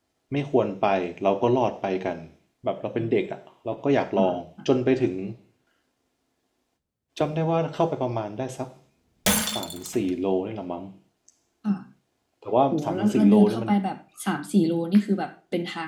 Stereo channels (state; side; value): identical; both; correlation 1.00